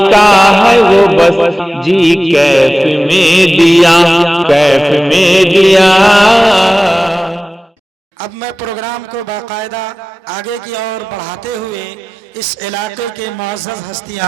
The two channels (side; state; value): both; normal; correlation 0.97